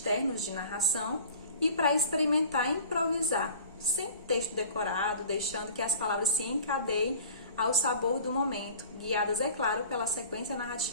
de narração e para experimentar improvisar, sem texto decorado, deixando que as palavras se encadeiem ao sabor do momento, guiadas, é claro, pela sequência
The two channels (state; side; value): inverted; both; correlation -0.44